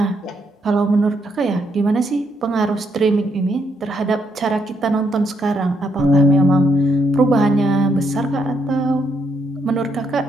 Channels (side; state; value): both; normal; correlation 0.76